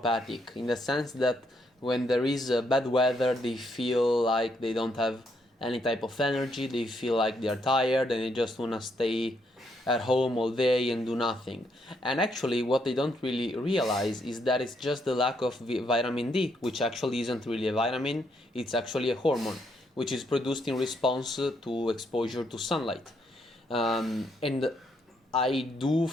in the sense that when there is bad weather, they feel like they don't have any type of energy, they feel like they're tired and they just want to stay at home all day and do nothing. And actually, what they don't really realize is that it's just the lack of vitamin D, which actually isn't really a vitamin, it's actually a hormone, which is produced in response to exposure to sunlight. And I do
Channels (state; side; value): normal; both; correlation 0.75